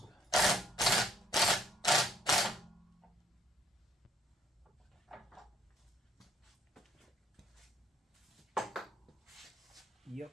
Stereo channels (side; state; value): both; normal; correlation 0.66